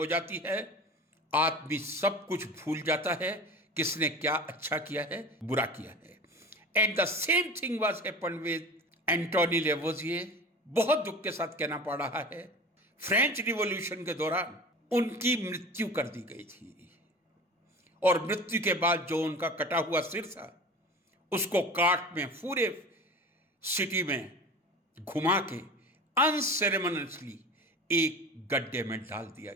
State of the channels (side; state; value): both; normal; correlation 0.35